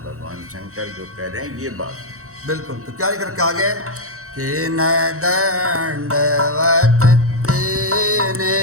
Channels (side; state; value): left; late; 0.64 ms